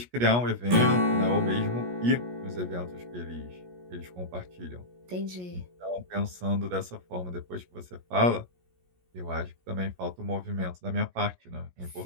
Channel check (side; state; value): left; late; 17 ms